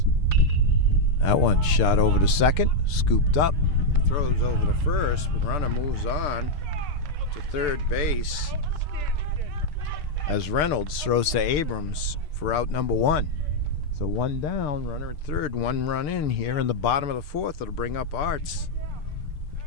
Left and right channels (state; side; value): late; right; 6.7 ms